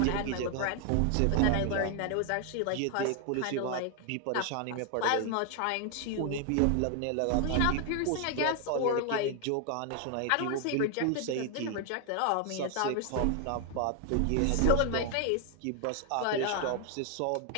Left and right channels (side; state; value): both; different; correlation 0.00